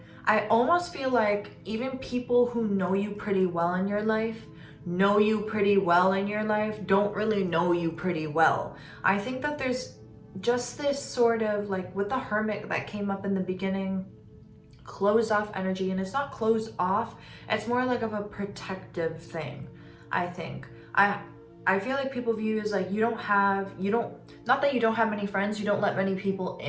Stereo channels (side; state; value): both; identical; correlation 1.00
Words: I almost feel like even people who know you pretty well in your life, don't really know you pretty well. I think that there's just this sort of like with the Hermit that came up in the beginning, closed off energy, and it's not closed off, it's more like of a protective thing, I think. I feel like people view you as like not that you don't have many friends, you don't let many people